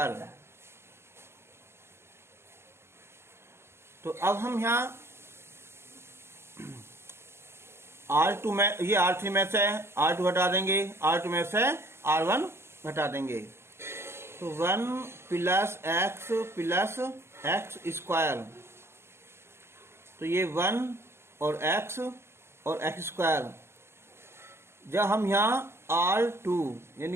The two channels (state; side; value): late; left; 0.12 ms